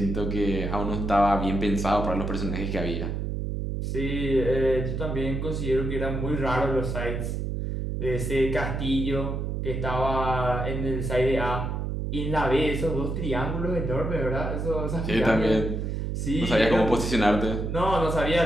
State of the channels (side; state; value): right; noise; hum, 2 dB below the sound